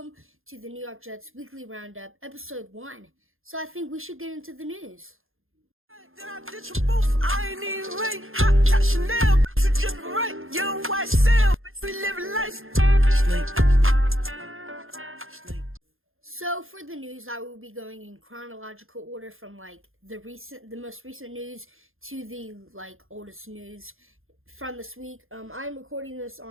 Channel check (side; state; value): left; late; 0.60 ms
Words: to the New York Jets Weekly Roundup, Episode 1. So I think we should get into the news. Then I ditch them both. I ain't even right. Hot top Chanel, you dripping right. Young white cell, we living life. Sleep. So for the news, I will be going in chronological order from the most recent news to the oldest news from this week. I'm recording this